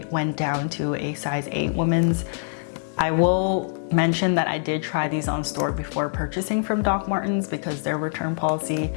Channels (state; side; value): silent; right; digital silence